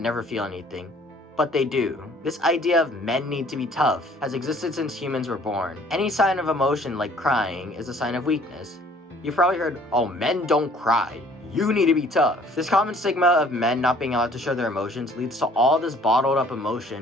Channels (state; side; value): normal; both; correlation 0.56